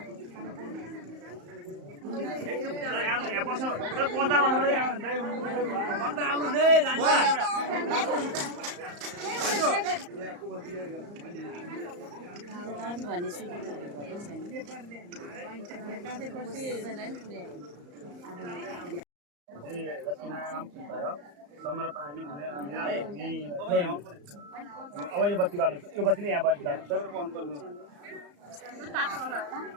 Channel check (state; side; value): late; left; 34 ms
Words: अब यो बत्ती बाल्नु यो बत्तीले यहाँ बत्ती बाल्नु